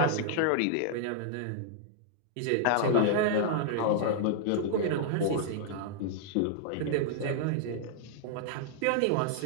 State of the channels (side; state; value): both; different; correlation -0.01